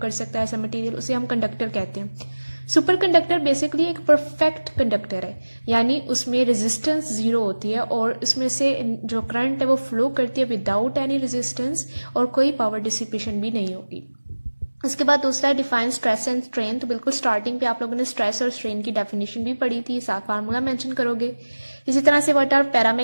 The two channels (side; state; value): both; inverted; correlation -1.00